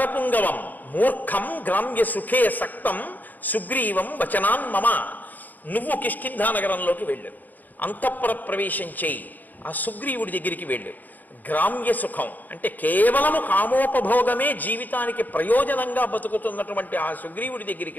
మూర్ఖం గ్రామ్య సుఖే సక్తం సుగ్రీవం వచనాన్ మమ. నువ్వు కిష్కింధా నగరంలోకి వెళ్ళు, అంతఃపుర ప్రవేశం చేయి, ఆ సుగ్రీవుడి దగ్గరికి వెళ్ళు. గ్రామ్య సుఖం అంటే కేవలము కామోపభోగమే జీవితానికి ప్రయోజనంగా బతుకుతున్నటువంటి ఆ సుగ్రీవుడి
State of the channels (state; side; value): late; right; 0.085 ms